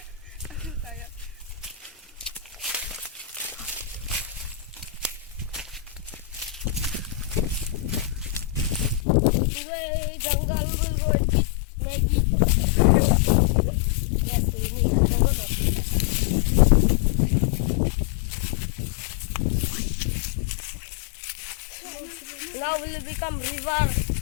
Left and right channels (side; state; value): right; drops out; at 9.1 s